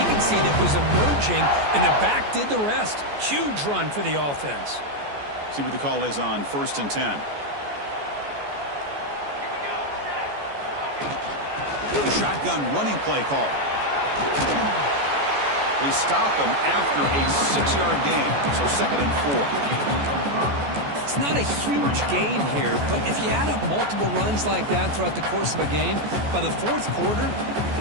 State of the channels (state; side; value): late; left; 14 ms